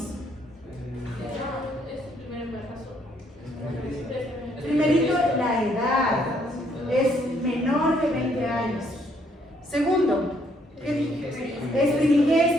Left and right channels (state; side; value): normal; both; correlation 0.69